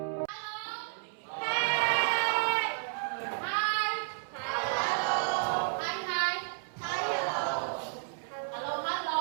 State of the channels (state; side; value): silent; left; 56 dB below the other